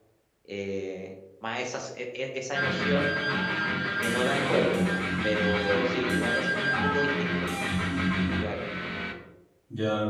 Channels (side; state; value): both; identical; correlation 1.00